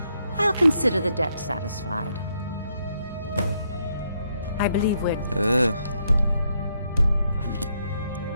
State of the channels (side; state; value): both; inverted; correlation -0.76